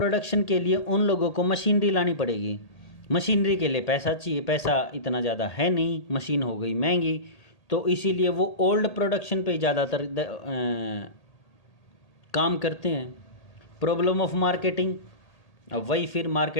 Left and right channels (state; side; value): late; right; 1.8 ms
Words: के लिए उन लोगों को मशीनरी लानी पड़ेगी, मशीनरी के लिए पैसा चाहिए, पैसा इतना ज़्यादा है नहीं, मशीन हो गई महंगी, तो इसीलिए वो ओल्ड प्रोडक्शन पे ज़्यादातर काम करते हैं। प्रॉब्लम ऑफ मार्केटिंग, अब वही फिर